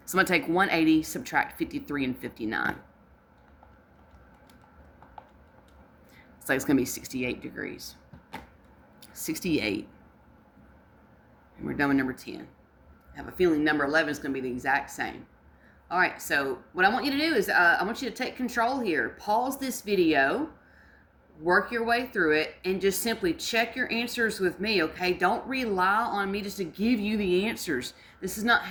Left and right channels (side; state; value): both; identical; correlation 1.00